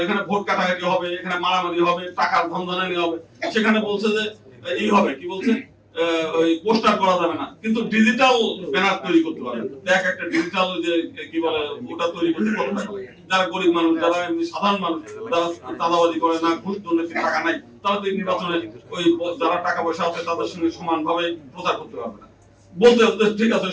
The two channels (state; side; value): identical; both; correlation 1.00